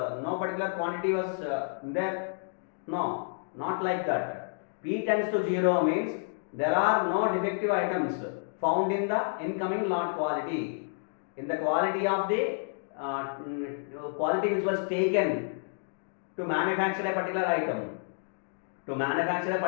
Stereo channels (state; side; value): silent; right; digital silence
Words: particular quantity was there. No, not like that. P tends to 0 means there are no defective items found in the incoming lot quality. In the quality of the quality which was taken to manufacture a particular item. To manufacture a